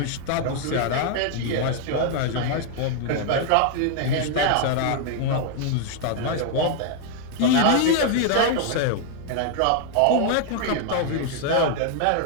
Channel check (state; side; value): different; both; correlation 0.00